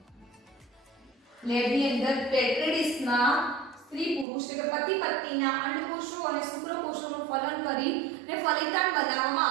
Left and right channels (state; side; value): drops out; left; at 4.2 s